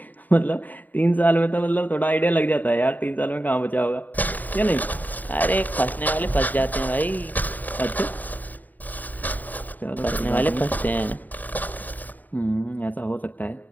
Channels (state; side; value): late; right; 0.084 ms